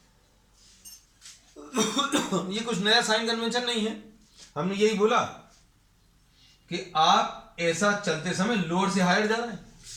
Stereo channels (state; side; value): identical; both; correlation 1.00